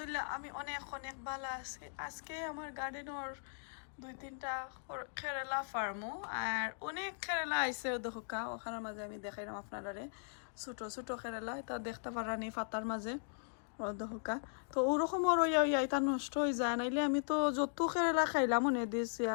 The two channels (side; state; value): right; silent; digital silence